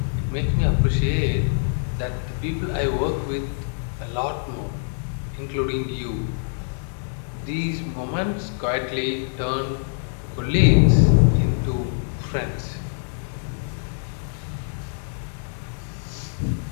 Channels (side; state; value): right; silent; 62 dB below the other